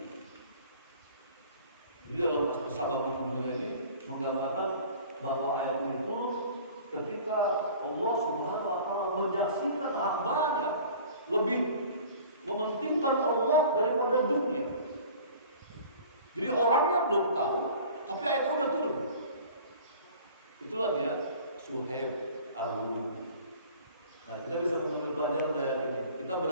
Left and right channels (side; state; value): both; inverted; correlation -0.46